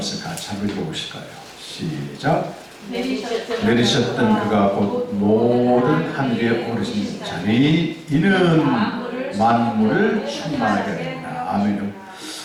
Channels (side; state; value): both; identical; correlation 1.00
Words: 같이 한번 읽어보실까요? 시작. 내리셨던 그가 곧 모든 하늘에 오르신 자니 이는 만물을 충만하게 하리라. 아멘.